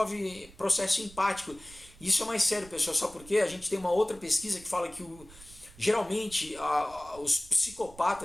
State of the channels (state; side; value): noise; right; rumble, 21 dB below the sound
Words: processo empático. Isso é mais sério, pessoal, só porque a gente tem uma outra pesquisa que fala que geralmente os